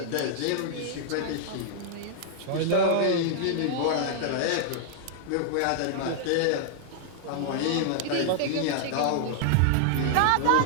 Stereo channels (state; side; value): different; both; correlation -0.01